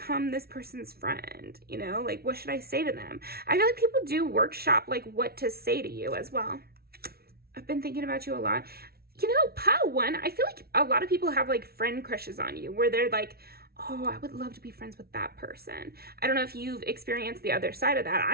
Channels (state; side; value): late; left; 0.44 ms